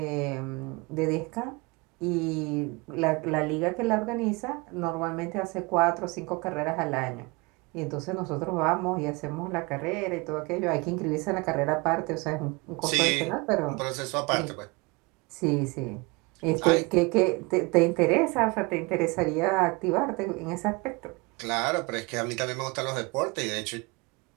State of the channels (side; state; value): left; quieter; 26.6 dB